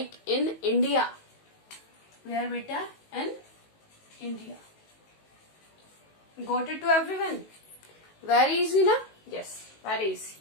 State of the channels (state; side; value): late; right; 19 ms